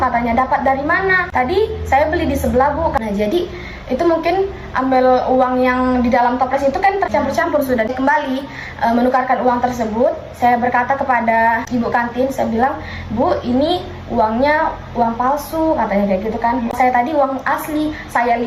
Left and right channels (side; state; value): both; identical; correlation 1.00